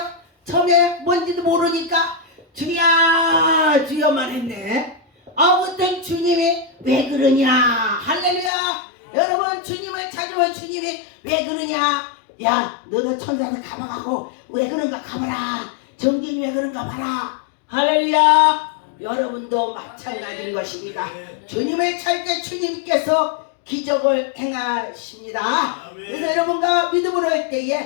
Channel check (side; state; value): right; drops out; at 8.5 s